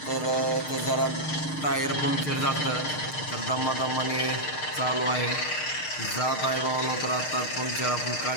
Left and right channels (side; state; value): right; late; 6.5 ms